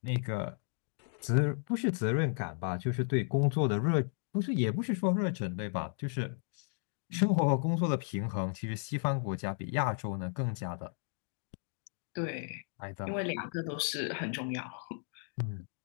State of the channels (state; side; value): silent; right; 55 dB below the other